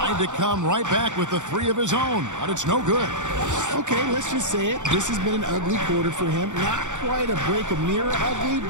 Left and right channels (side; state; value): left; late; 0.85 ms